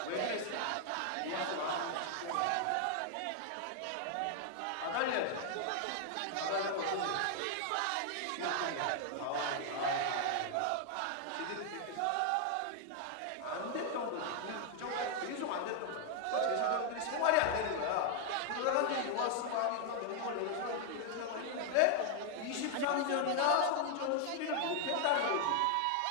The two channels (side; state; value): both; different; correlation 0.00